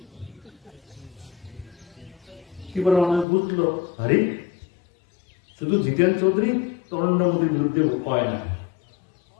কি বলে অনেক বুঝলো আরে শুধু জিতেন চৌধুরী নরেন্দ্র মোদীর বিরুদ্ধে কয় না,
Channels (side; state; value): right; drops out; at 3.2 s